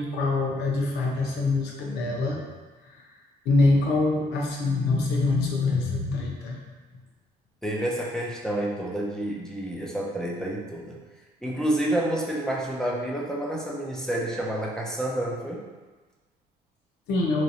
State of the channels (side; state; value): both; normal; correlation 0.73